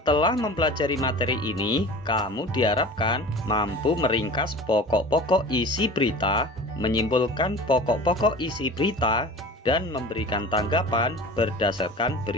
mempelajari materi ini, kamu diharapkan mampu meringkas pokok-pokok isi berita, menyimpulkan pokok-pokok isi berita, dan memberikan tanggapan berdasarkan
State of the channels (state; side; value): normal; both; correlation 0.38